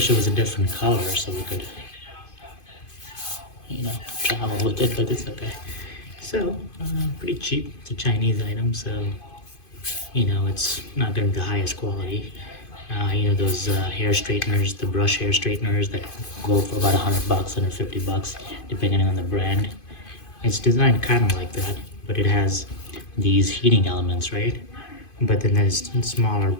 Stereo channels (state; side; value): late; right; 2.5 ms